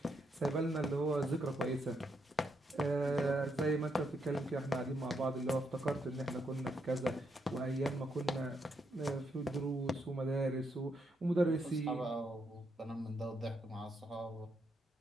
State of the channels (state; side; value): normal; both; correlation 0.79